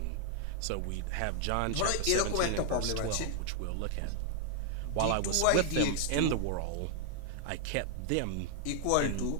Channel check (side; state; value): both; different; correlation 0.00